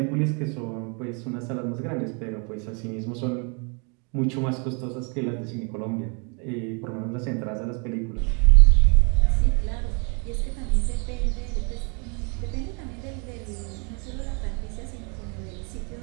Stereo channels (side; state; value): left; quieter; 35.5 dB